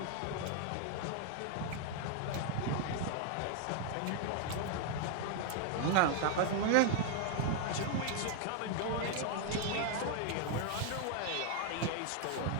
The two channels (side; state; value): both; different; correlation 0.00